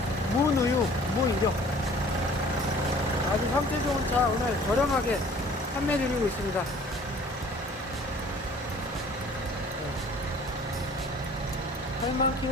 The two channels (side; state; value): both; normal; correlation 0.51